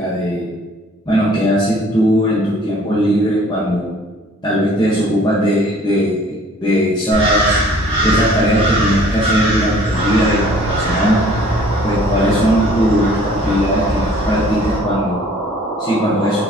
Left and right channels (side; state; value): both; normal; correlation 0.54